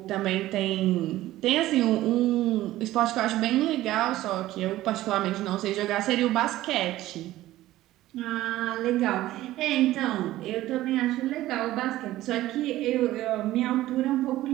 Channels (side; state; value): left; quieter; 15.5 dB